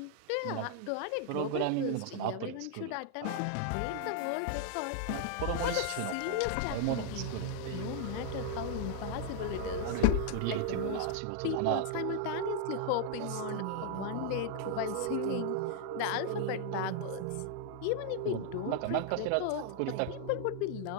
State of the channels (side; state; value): both; different; correlation 0.00